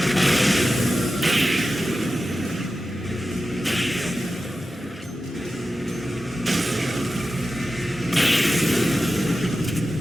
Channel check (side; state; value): both; normal; correlation 0.93